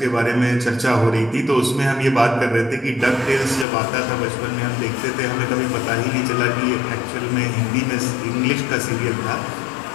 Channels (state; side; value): drops out; right; at 3.7 s